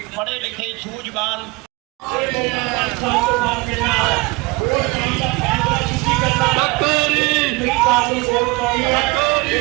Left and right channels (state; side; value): quieter; left; 24.5 dB